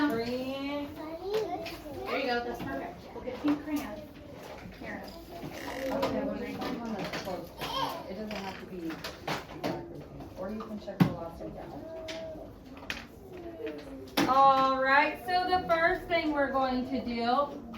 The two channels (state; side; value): identical; both; correlation 1.00